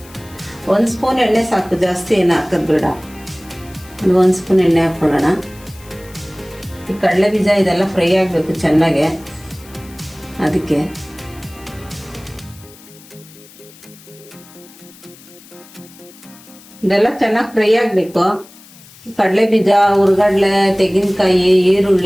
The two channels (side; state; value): left; noise; hiss, 23 dB below the sound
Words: 1 ಸ್ಪೂನ್ ಎಣ್ಣೆ ಸಾಕು, ಜಾಸ್ತಿ ಏನು ಹಾಕೋದು ಬೇಡ. 1 ಸ್ಪೂನ್ ಎಣ್ಣೆ ಹಾಕ್ಕೊಳ್ಳೋಣ. ಈ ಕಡಲೆ ಬೀಜ ಇದೆಲ್ಲ ಫ್ರೈ ಆಗಬೇಕು ಚೆನ್ನಾಗೆ, ಅದಕ್ಕೆ. ಇದೆಲ್ಲ ಚೆನ್ನಾಗಿ ಫ್ರೈ ಆಗಬೇಕು. ಕಡಲೆ ಬೀಜ, ಹುರ್ಗಡ್ಲೆ, ತೆಂಗಿನಕಾಯಿ,